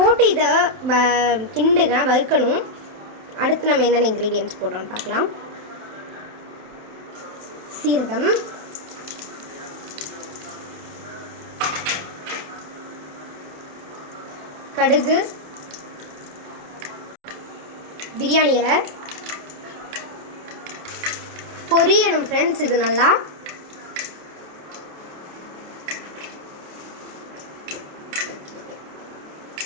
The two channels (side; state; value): left; late; 27 ms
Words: இதை கிண்டுங்க, வறுக்கணும். அடுத்து நம்ம என்னென்ன இன்க்ரீடியன்ட்ஸ் போடுறோம்னு பார்க்கலாம். சீரகம், கடுகு, பிரியாணி இலை பொரியணும் ஃப்ரெண்ட்ஸ். இது நல்லா